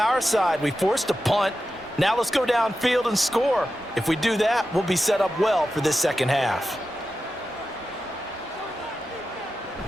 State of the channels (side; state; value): both; normal; correlation 0.91